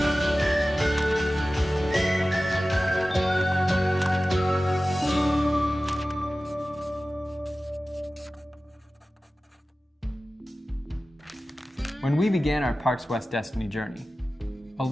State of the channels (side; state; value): both; normal; correlation 0.96